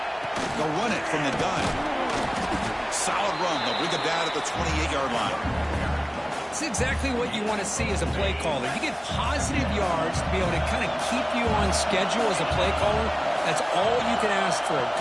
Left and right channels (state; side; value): identical; both; correlation 1.00